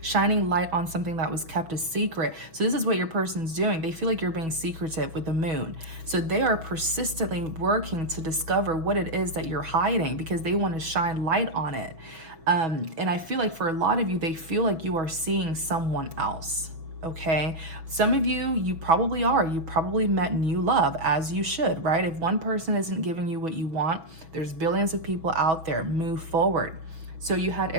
shining light on something that was kept a secret. So this is what your person's doing. They feel like you're being secretive with the moon. So they are persistently working to discover what it is that you're hiding because they want to shine light on it. And I feel like for a lot of you, they feel like you are seeing someone else. Okay, some of you probably are. You probably met new love, as you should, right? If one person isn't giving you what you want, there's billions of people out there. Move forward. So you had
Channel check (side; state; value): left; late; 6.2 ms